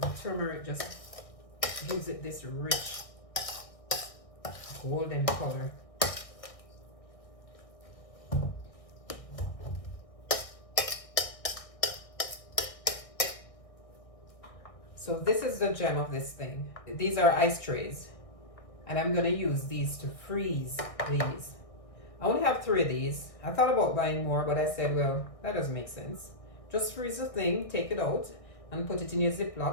turmeric just gives it this rich golden color. So this is the gem of this thing. These are ice trays. And I'm gonna use these to freeze these. I only have 3 of these. I thought about buying more, but I said, well, that doesn't make sense. Just freeze the thing, take it out, and put it in your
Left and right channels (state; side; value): late; right; 1.6 ms